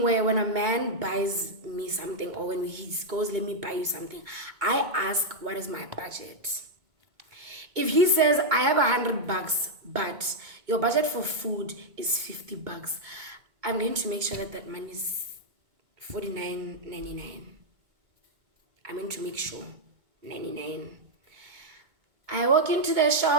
where when a man buys me something or when he goes, let me buy you something, I ask, what is my budget? If he says, I have $100, but your budget for food is $50, I'm going to make sure that that money is $49.99. I'm going to make sure, 99. I walk into the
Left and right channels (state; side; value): late; left; 2.2 ms